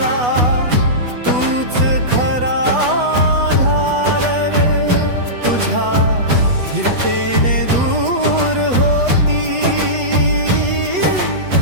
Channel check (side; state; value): left; late; 8.2 ms